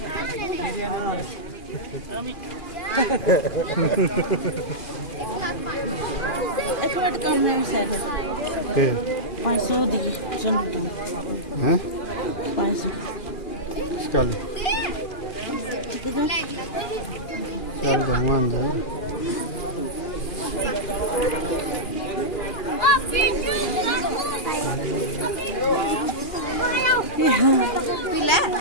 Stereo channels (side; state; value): right; late; 2.4 ms